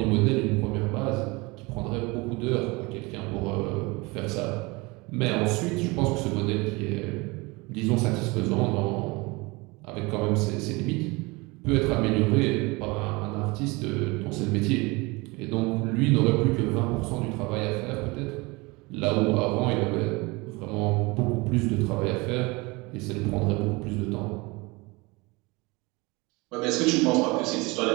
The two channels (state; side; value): quieter; left; 25.0 dB